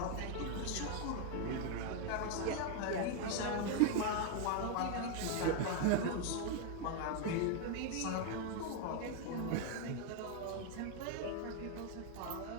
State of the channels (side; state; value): both; different; correlation 0.01